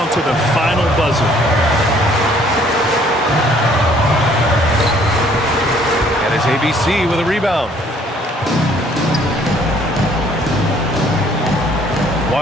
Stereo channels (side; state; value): both; normal; correlation 0.60